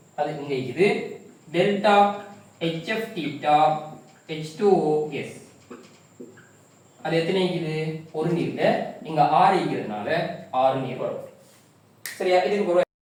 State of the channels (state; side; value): identical; both; correlation 1.00